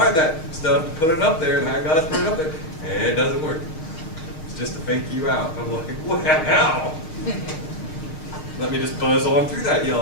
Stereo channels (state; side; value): late; right; 6.4 ms